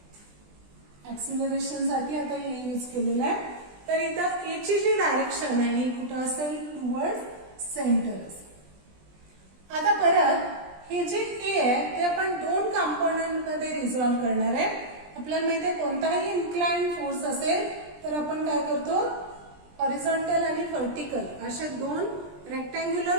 ऍक्सिलरेशन साठी आता ए यूज केलेलं आहे. तर इथं ए ची जी डायरेक्शन आहे ही कुठं असेल, टुवर्ड सेंटर असेल. आता परत हे जे ए आहे ते आपण दोन कंपोनंट मध्ये रिझॉल्व्ह करणार आहे. आपल्याला माहिती आहे कोणताही इन्क्लाइंड फोर्स असेल तर आपण काय करतो, हॉरिझॉन्टल आणि व्हर्टिकल असे दोन रेक्टँग्युलर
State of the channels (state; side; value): late; left; 20 ms